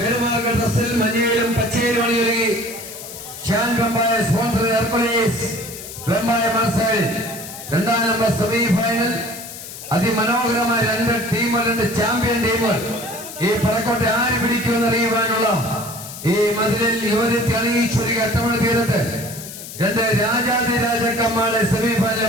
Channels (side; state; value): left; noise; hiss, 12 dB below the sound